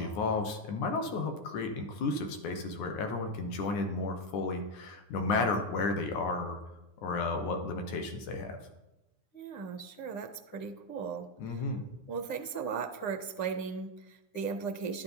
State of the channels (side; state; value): right; late; 9.8 ms